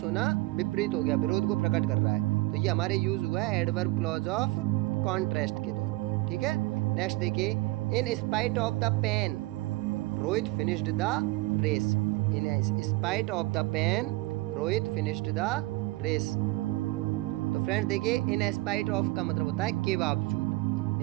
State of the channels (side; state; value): left; quieter; 21.0 dB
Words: होना विपरीत हो गया, विरोध को प्रकट कर रहा है। तो ये हमारे यूज हुआ है एडवर्ब क्लॉज ऑफ कॉन्ट्रास्ट के तौर पर, ठीक है। नेक्स्ट देखिए, in spite of the pain Rohit finished the race. In spite of the pain Rohit finished the race. तो फ्रेंड्स देखिए, इन स्पाइट ऑफ का मतलब होता है के बावजूद।